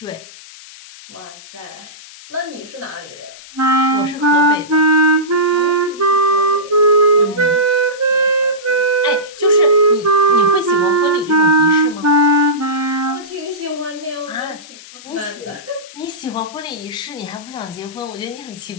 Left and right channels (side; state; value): left; noise; hiss, 19 dB below the sound